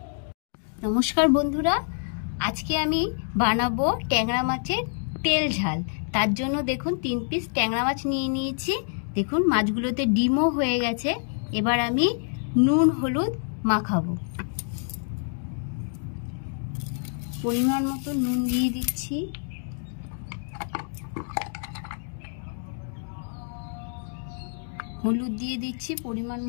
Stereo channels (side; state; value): right; silent; 60 dB below the other